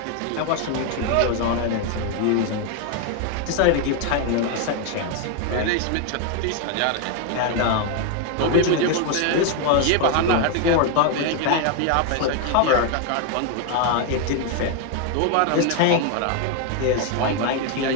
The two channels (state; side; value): different; both; correlation 0.01